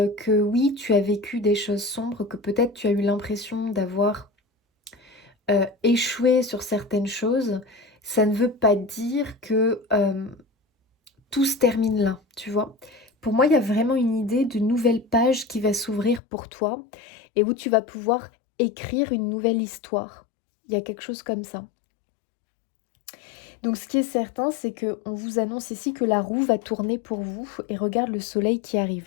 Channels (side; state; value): right; drops out; at 16.2 s